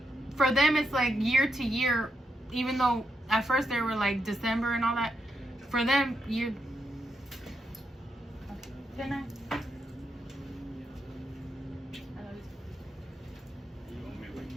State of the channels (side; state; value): both; normal; correlation 0.81